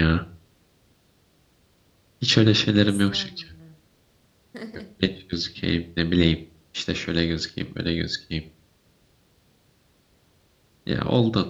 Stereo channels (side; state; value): both; identical; correlation 1.00